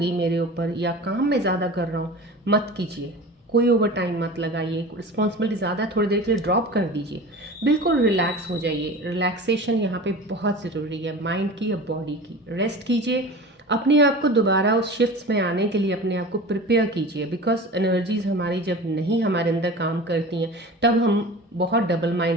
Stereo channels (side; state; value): both; normal; correlation 0.35